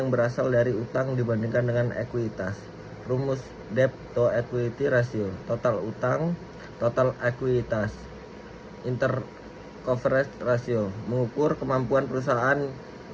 berasal dari utang dibandingkan dengan ekuitas. Rumus debt to equity ratio, total utang, total ekuitas. Intercoverage ratio, mengukur kemampuan perusahaan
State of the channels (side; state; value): both; identical; correlation 1.00